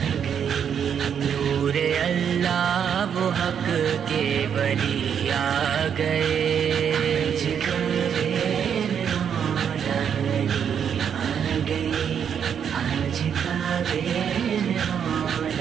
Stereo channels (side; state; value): left; quieter; 8.0 dB